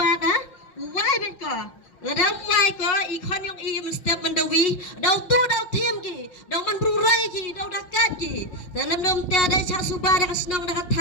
uai ben ko Ladam mai ko ikon yang step mendawi dau tu dau tim ki dau man brurai ki dau dakat ki dalam dom te ada cha suba da kasnong da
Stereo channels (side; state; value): right; late; 5.5 ms